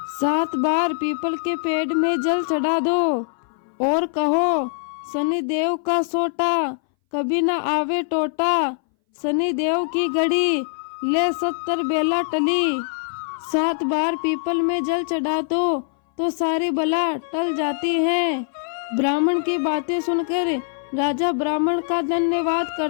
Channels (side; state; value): right; silent; 61 dB below the other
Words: 7 बार पीपल के पेड़ में जल चढ़ा दो और कहो, शनि देव का सोटा कभी न आवे टोटा। शनि देव की घड़ी ले 70 बेला टली। 7 बार पीपल में जल चढ़ा दो तो सारी बला टल जाती है। ब्राह्मण की बातें सुनकर राजा ब्राह्मण का धन्यवाद